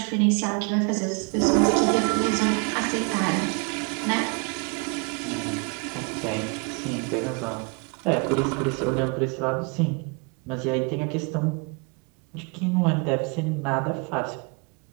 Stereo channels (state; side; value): quieter; left; 33.3 dB